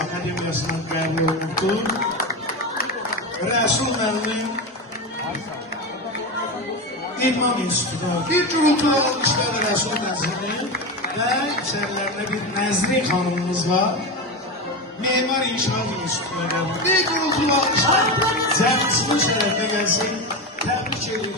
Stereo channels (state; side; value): normal; both; correlation 0.18